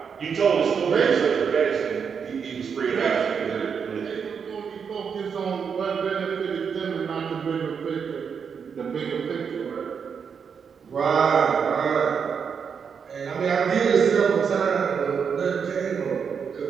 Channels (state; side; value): quieter; left; 6.6 dB